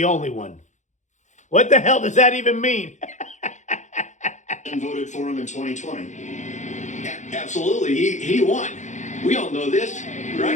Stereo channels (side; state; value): right; late; 0.35 ms